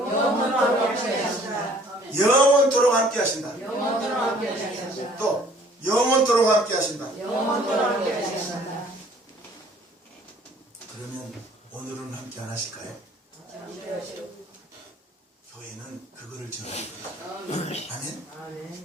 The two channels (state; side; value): normal; both; correlation 0.56